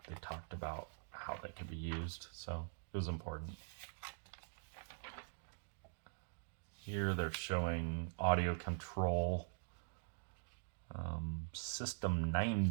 they talked about how they could be used, so it was important. Here they're showing Audio Control System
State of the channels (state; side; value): silent; left; digital silence